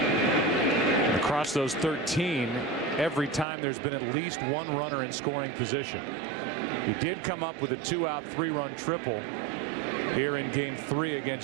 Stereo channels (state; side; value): drops out; left; at 3.5 s